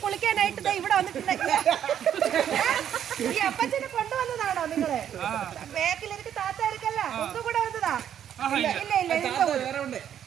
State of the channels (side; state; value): left; quieter; 9.7 dB